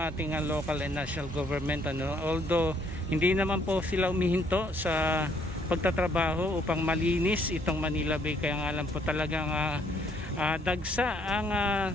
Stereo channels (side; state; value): both; normal; correlation 0.66